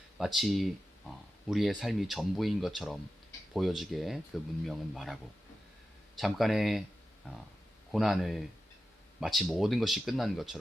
마치 우리의 삶이 전부인 것처럼 보여지게 그 문명은 말하고 잠깐의 고난을 마치 모든 것이 끝난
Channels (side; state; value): both; normal; correlation 0.92